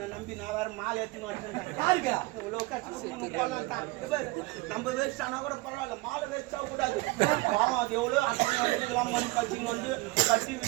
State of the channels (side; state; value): left; quieter; 22.5 dB